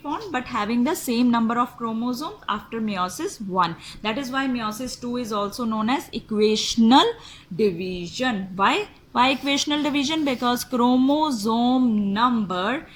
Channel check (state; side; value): identical; both; correlation 1.00